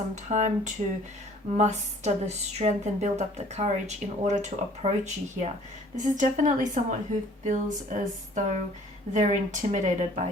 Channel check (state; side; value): normal; both; correlation 0.54